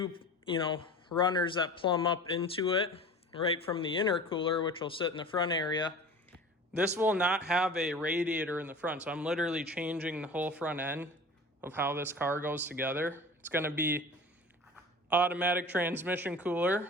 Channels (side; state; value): both; normal; correlation 0.38